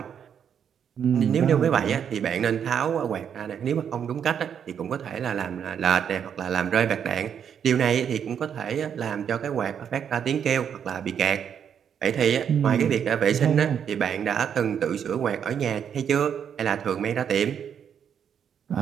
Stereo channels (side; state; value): left; quieter; 8.1 dB